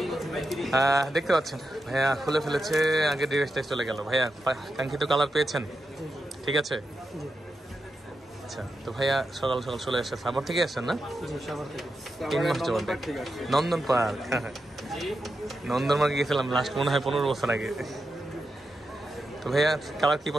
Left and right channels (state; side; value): normal; both; correlation 0.88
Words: দেখতে পাচ্ছেন। ভাইয়া খুলে ফেলেছে, আগে ডিভাইসটাই চলে গেল। ভাইয়া কাঙ্ক্ষিত কালার পেয়েছেন? ঠিক আছে, আচ্ছা। তো ভাইয়া সকাল সকাল চলে আসছে। সাভার থেকে আসছেন না? 3 মাস যাবত। নন্দন পার্ক, নন্দন পার্কে গেছিলাম লাস্ট মনে হয় 15 বছর আগে। তো ভাইয়া কালার কি